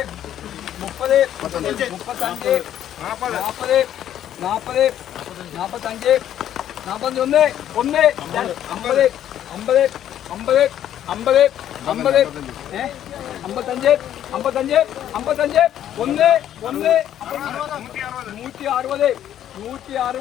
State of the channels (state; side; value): quieter; right; 11.0 dB